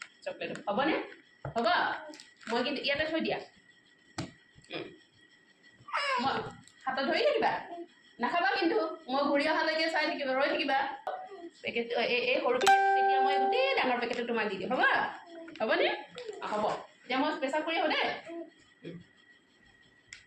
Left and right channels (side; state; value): both; identical; correlation 1.00